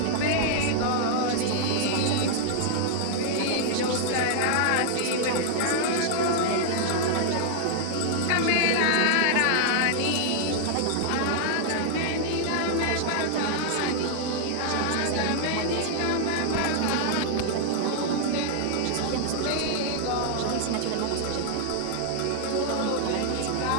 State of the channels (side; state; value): both; different; correlation 0.00